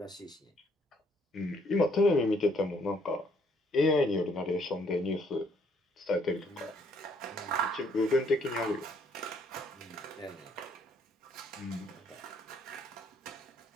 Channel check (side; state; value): both; normal; correlation 0.66